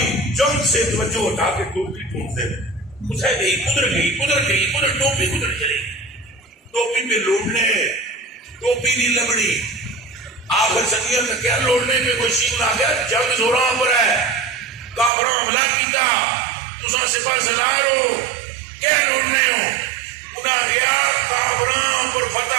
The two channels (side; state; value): left; drops out; at 15.1 s